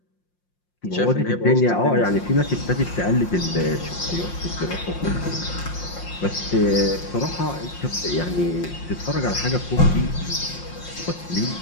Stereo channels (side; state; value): right; late; 5.7 ms